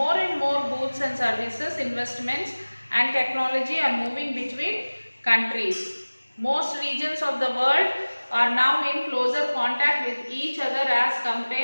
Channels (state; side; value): inverted; both; correlation -1.00